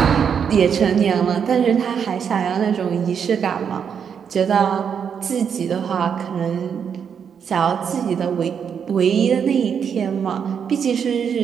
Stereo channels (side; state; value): left; quieter; 7.3 dB